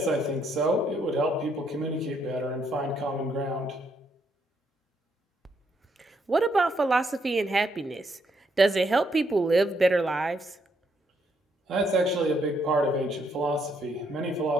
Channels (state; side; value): normal; both; correlation 0.74